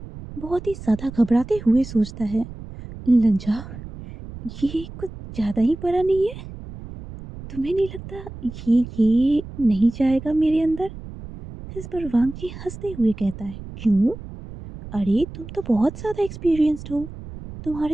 बहुत ही ज्यादा घबराते हुए सोचता है, लंजा, ये कुछ ज्यादा ही बड़ा नहीं है? तुम्हें नहीं लगता ये नहीं जाएगा मेरे अंदर? इस पर वांगजी हंसते हुए कहता है, क्यों? अरे तुम तो बहुत ज्यादा एक्सपीरियंस्ड हो,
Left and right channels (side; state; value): right; noise; rumble, 13 dB below the sound